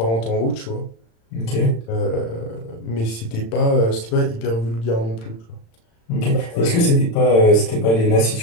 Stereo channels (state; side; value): late; right; 35 ms